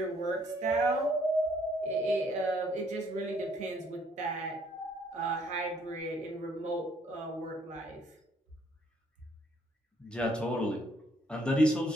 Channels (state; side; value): normal; both; correlation 0.66